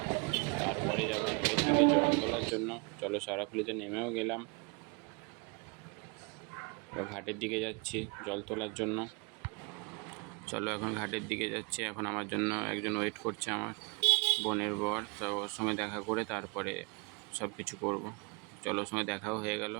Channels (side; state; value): left; quieter; 32.0 dB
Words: তারপরে যাবো ঘাটের দিকে জল তোলার জন্য। চলো, শেওড়াফুলিতে নেমেও গেলাম, এবার ঘাটের দিকে যাচ্ছি জল তোলার জন্য। চলো, এখন ঘাটের দিকে যাচ্ছি। এখন আমার জন্য একজন ওয়েট করছে, আমার বোনের বর। তো ওর সঙ্গে দেখা করে তারপরে সব কিছু করবো। চলো, ওর সঙ্গে দেখাও হয়ে গেল।